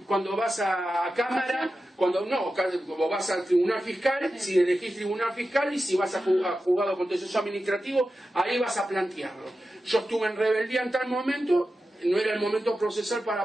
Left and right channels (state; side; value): normal; both; correlation 0.92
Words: vas a cámara, cuando vas al tribunal fiscal, si elegís tribunal fiscal, y si vas a juzgado contencioso administrativo, ahí vas a plantearlo. Yo estuve en rebeldía en tal momento, no era el momento procesal